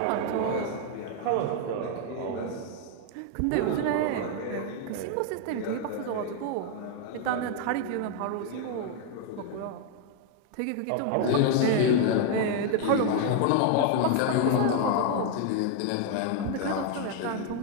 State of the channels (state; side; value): different; both; correlation 0.00